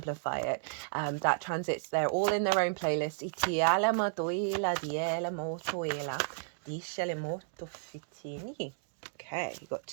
it. That transits, they're all in their own playlist. Okay, you got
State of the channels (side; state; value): left; silent; digital silence